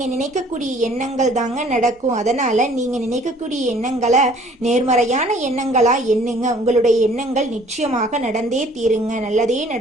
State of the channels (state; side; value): normal; both; correlation 0.55